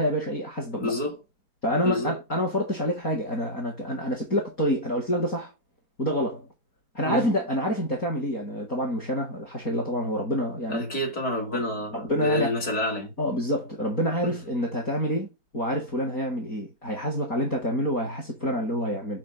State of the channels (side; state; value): right; late; 4.5 ms